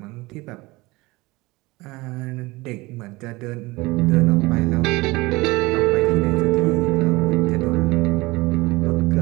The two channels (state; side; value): quieter; left; 22.0 dB